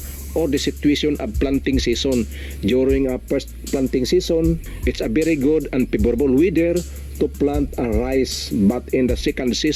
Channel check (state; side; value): identical; both; correlation 1.00